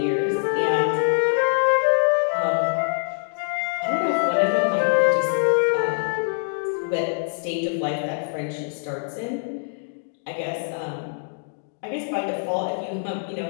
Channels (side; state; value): right; silent; digital silence